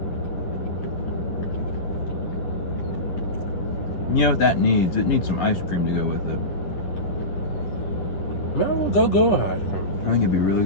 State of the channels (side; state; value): right; late; 10 ms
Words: You know what that needs? It needs some ice cream to go with it. Man, we'll go with ice cream. I think it'd be really